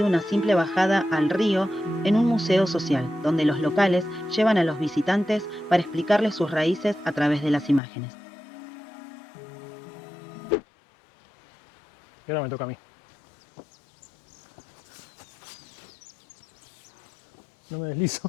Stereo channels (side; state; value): right; drops out; at 7.8 s